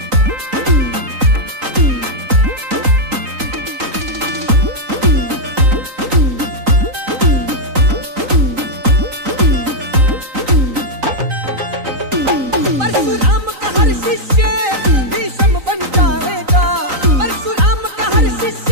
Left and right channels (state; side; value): late; left; 3.9 ms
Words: परशुराम का हर शिष्य भीष्म बन जाएगा। परशुराम का हर